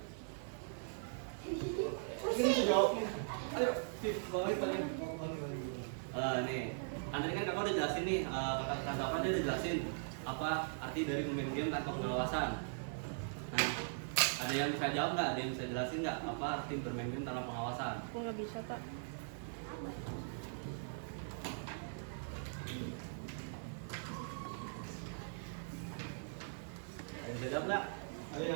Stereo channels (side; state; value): left; silent; digital silence